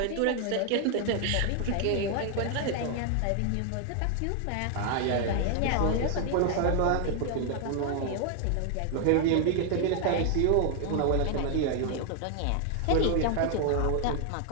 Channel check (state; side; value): different; both; correlation 0.00